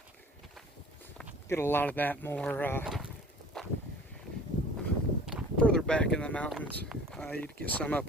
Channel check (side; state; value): both; normal; correlation 0.47